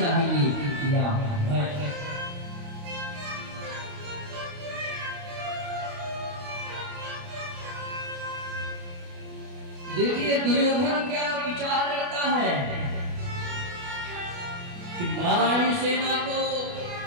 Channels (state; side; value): late; left; 28 ms